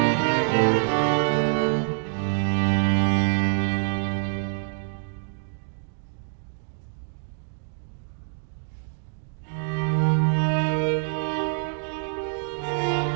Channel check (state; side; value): silent; left; digital silence